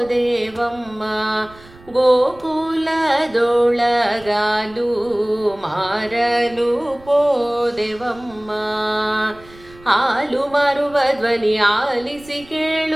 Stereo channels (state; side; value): noise; right; rumble, 23 dB below the sound